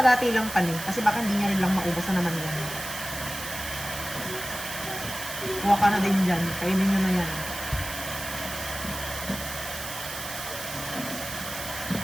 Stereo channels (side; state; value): right; noise; hiss, 8 dB below the sound